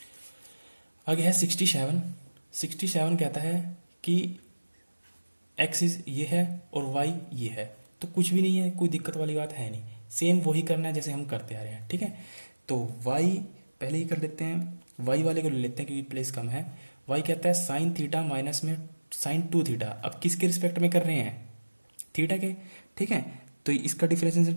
आगे है 67। 67 कहता है कि एक्सिस ये है और वाई ये है, तो कुछ भी नहीं है, कोई दिक्कत वाली बात है नहीं, सेम वही करना है जैसे हम करते आ रहे हैं, ठीक है। तो वाई पहले ही कर लेते हैं, वाई वाले को ले लेते हैं क्योंकि प्लेस कम है। वाई कहता है साइन थीटा माइनस में साइन 2 थीटा, अब किसके रिस्पेक्ट में कर रहे हैं थीटा के, ठीक है। तो इसका डिफरेंशिएशन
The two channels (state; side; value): inverted; both; correlation -1.00